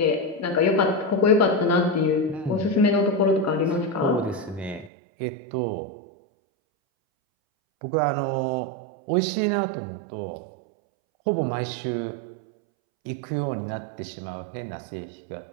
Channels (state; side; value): drops out; left; at 4.9 s